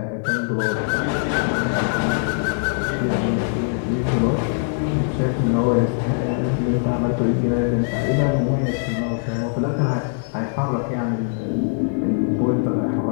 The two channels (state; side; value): silent; right; 58 dB below the other